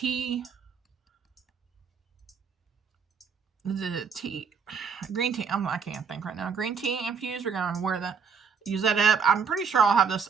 the tea, green tea. I can't think right now. Green tea infused. We're gonna use that up. I'm pretty sure I'll have this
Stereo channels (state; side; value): quieter; left; 6.0 dB